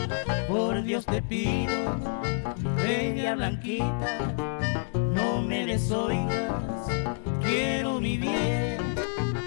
Por Dios te pido, bella blanquita, no me desoigas, quiero mi bien.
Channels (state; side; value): silent; right; 59 dB below the other